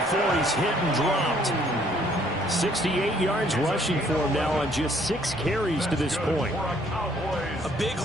he's hit and dropped. 68 yards rushing for him now on just 6 carries to this point. A big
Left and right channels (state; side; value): normal; both; correlation 0.63